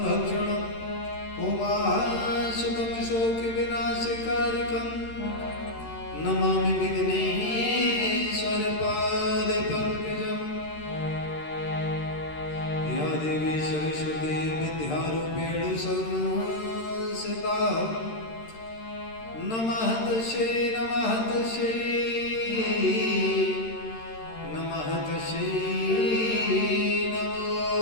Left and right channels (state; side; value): late; right; 13 ms